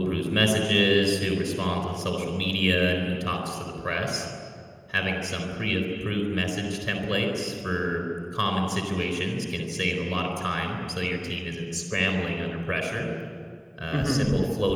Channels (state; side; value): identical; both; correlation 1.00